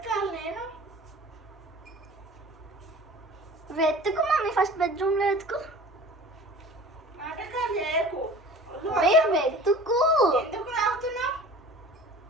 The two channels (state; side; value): normal; both; correlation 0.42